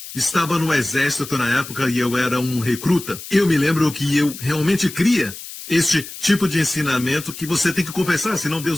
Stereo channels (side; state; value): left; noise; hiss, 13 dB below the sound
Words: estava no exército na época e eu era um recruta, eu me lembro que eu realmente cria este tipo de ensinamento que você tem que confessar, senão